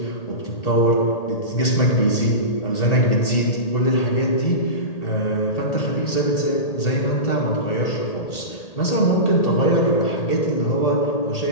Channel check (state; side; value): late; right; 1.8 ms